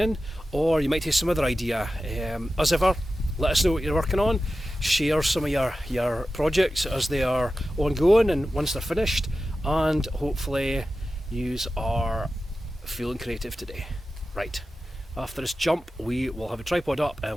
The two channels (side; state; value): both; normal; correlation 0.93